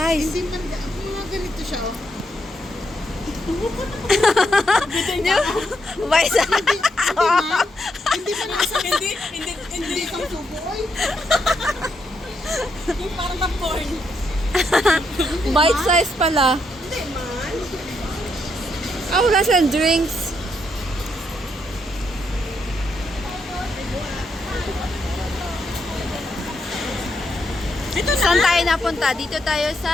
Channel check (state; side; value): normal; both; correlation 0.79